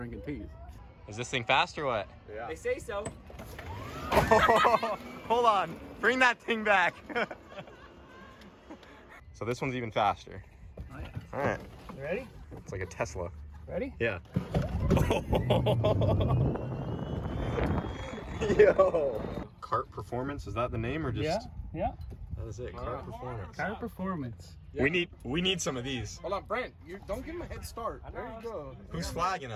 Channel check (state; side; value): identical; both; correlation 1.00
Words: teas. Is this thing fast or what? Yeah. They say so. Hold on. Bring that thing back. So this one's even faster. Oh, yeah. All right. You ready? It's like a Tesla. Ready? Yeah. Yo. Kart Performance, is that the name or just? Yeah. That is it. Kart Performance. Kart Performance. We need some of these. Hold on, Brent. You don't give him a head start. There you go. Who's flagging